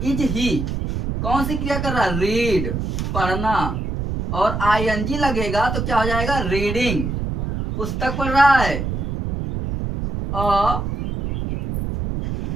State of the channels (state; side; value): noise; right; rumble, 3 dB below the sound